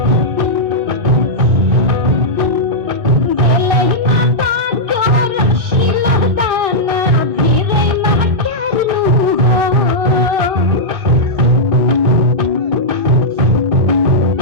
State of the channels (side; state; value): left; late; 1.1 ms